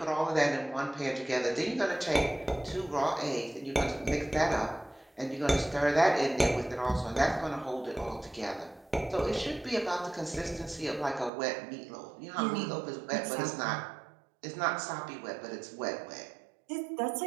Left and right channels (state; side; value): drops out; left; at 11.3 s